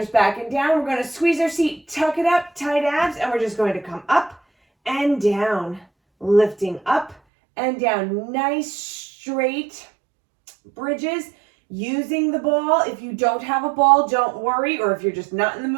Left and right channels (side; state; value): left; drops out; at 7.2 s